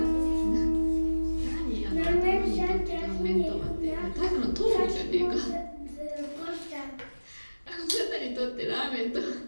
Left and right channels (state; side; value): inverted; both; correlation -1.00